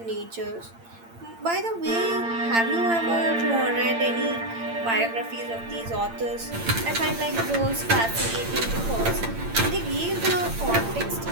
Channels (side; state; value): left; late; 8.8 ms